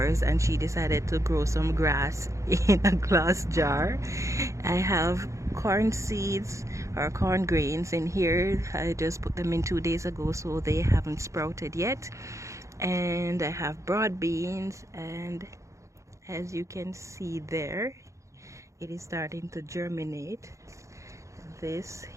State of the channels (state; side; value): late; left; 0.15 ms